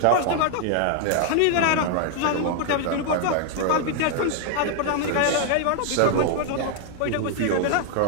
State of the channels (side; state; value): both; different; correlation 0.00